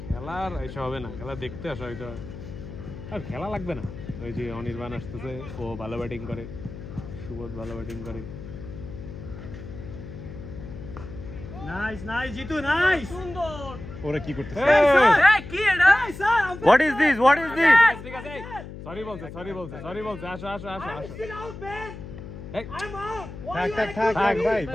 খেলার এসব হবে না খেলা দেখতে আসা হয়তো আর খেলা লাগবে না ওই যে অনির্বাণ আসতেছে ও ভালো ব্যাটিং করে সুবোধ ভালো ব্যাটিং করে নাইস জিতু নাইস সুন্দর ওরা কি করতেছে এই কি এটা স্যার What is this ঠিক আছে সরি বলছে আসো still out man এই I'm out থাক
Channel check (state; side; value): noise; left; hum, 12 dB below the sound